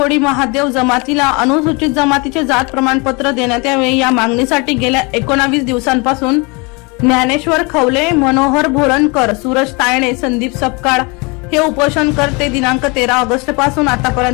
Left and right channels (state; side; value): quieter; right; 29.1 dB